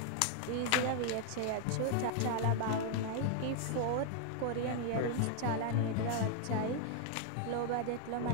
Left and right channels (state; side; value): different; both; correlation 0.00